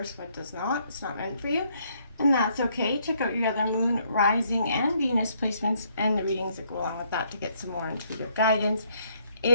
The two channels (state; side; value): inverted; both; correlation -0.70